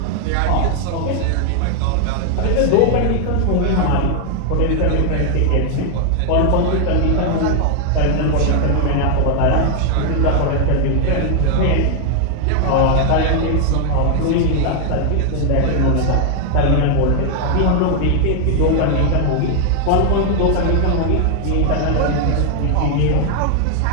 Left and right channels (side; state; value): both; different; correlation 0.00